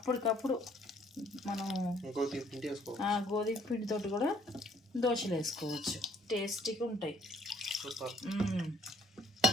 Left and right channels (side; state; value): both; normal; correlation 0.62